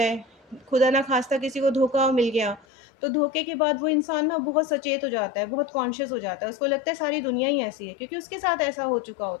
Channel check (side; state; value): right; drops out; at 2.7 s